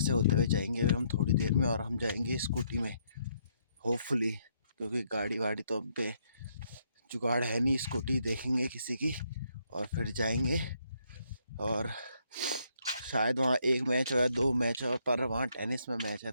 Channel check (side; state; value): both; inverted; correlation -0.72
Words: होते हुए जाएंगे हम थोड़ी देर में, और हम जाएंगे स्कूटी में होपफुली, क्योंकि गाड़ी वाड़ी तो अब पे जुगाड़ है नहीं। स्कूटी देखेंगे किसी की और फिर जाएंगे। और शायद वहाँ एक मैच हो या दो मैच हो, पर वहाँ टेनिस में मैच है